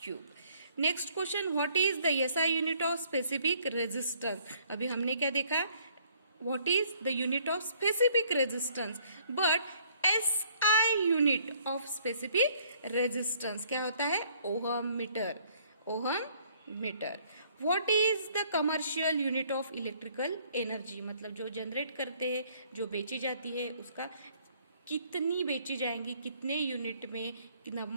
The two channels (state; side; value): inverted; both; correlation -0.62